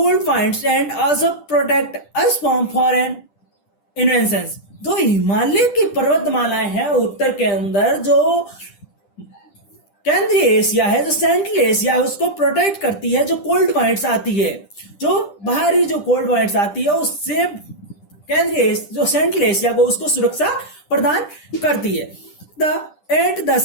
winds and also protect us from foreign inventions. तो हिमालय की पर्वतमालाएं हैं उत्तर के अंदर जो केंद्रीय एशिया है, जो सेंट्रल एशिया है, उसको प्रोटेक्ट करती है। जो कोल्ड वाइंड्स आती है, जो बाहरी जो कोल्ड वाइंड्स आती है, उससे केंद्रीय जो सेंट्रल एशिया को उसको सुरक्षा प्रदान करती है। At the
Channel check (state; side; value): late; right; 10 ms